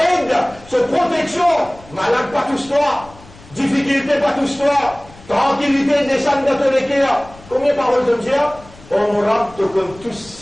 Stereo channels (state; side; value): noise; left; rumble, 22 dB below the sound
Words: ce protection. Malade pas tous toi. Difficulté pas tous toi. Tranquillité descend dans ton équerre. Combien de paroles de Dieu? On me te comme tout